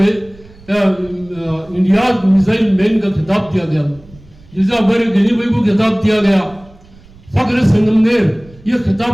इंडिया मिसाइल मैन का खिताब दिया गया, जैसे हमारे गनी भाई को खिताब दिया गया, फख्र संगमनेर। ये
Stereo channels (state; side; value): noise; right; rumble, 25 dB below the sound